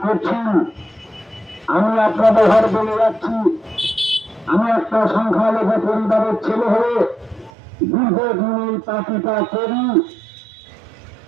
করছেন। আমি আপনাদের ঘর বলে যাচ্ছি, আমি একটা সংখ্যালঘু পরিবারের ছেলে হয়ে দীর্ঘদিন এই পার্টিটা করি।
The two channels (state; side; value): drops out; left; at 7.5 s